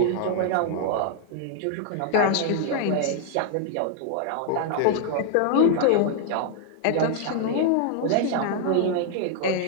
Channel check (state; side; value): different; both; correlation -0.01